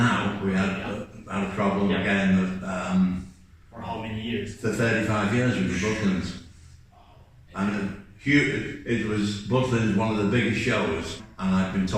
We had a problem again. For how many years? For 35 years with the Butlins. And it was Butlins, one of the biggest shows, and I've been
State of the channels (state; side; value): identical; both; correlation 1.00